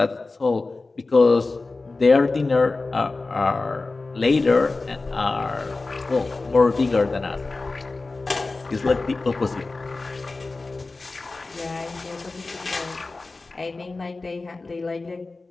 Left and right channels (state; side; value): quieter; right; 3.5 dB